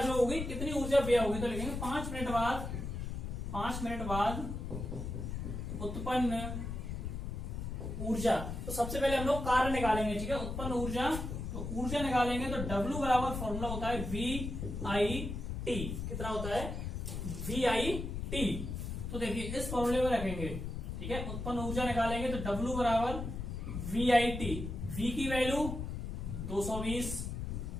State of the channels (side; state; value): left; noise; rumble, 5 dB below the sound